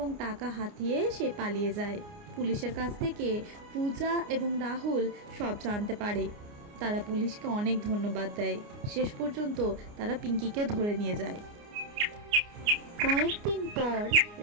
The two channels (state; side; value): late; left; 29 ms